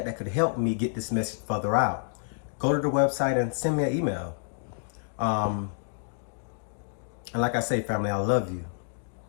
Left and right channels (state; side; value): silent; right; 59 dB below the other